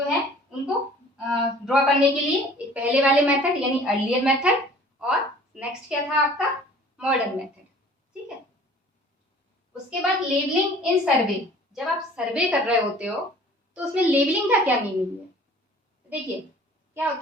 है उनको ड्रॉ करने के लिए एक पहले वाले मेथड यानी अर्लियर मेथड, और नेक्स्ट क्या था आपका, मॉडर्न मेथड, ठीक है। उसके बाद लेबलिंग इन सर्वे, जब आप सर्वे कर रहे होते हो तो उसमें लेबलिंग का क्या मीनिंग है। देखिए क्या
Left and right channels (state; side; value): normal; both; correlation 0.49